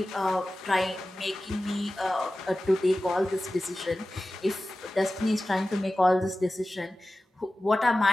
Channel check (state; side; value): normal; both; correlation 0.95